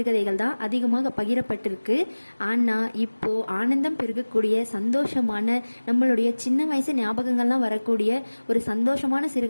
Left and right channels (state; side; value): inverted; both; correlation -1.00